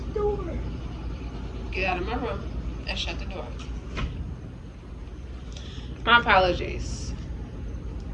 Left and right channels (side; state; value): both; identical; correlation 1.00